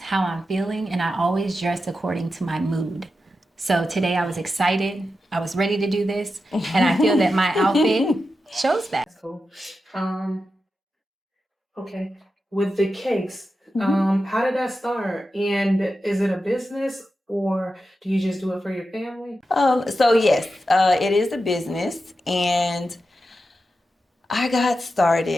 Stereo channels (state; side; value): normal; both; correlation 0.90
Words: I'm feeling, and I always dress according to my mood. So today I was excited. I was ready to do this, and I feel that my outfit shows that. That's cool. Okay. With the cakes, how did that start? And is it a business or do you just do it for your family? So yes, it is a business, and I got